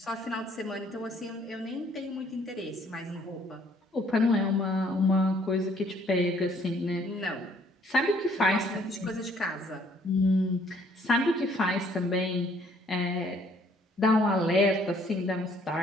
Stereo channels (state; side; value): normal; both; correlation 0.63